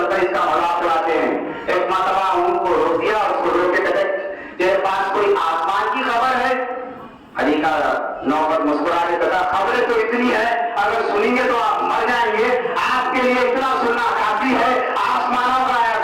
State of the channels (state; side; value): identical; both; correlation 1.00